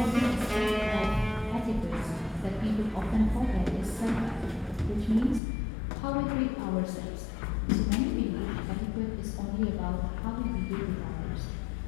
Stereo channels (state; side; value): drops out; right; at 5.4 s